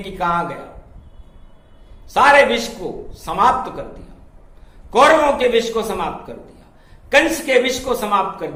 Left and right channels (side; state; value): both; identical; correlation 1.00